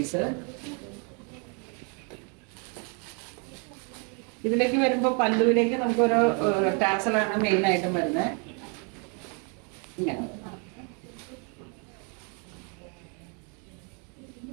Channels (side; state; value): left; quieter; 36.9 dB